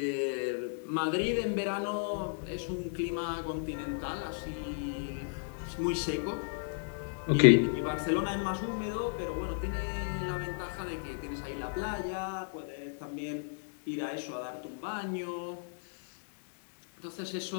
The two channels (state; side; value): silent; right; digital silence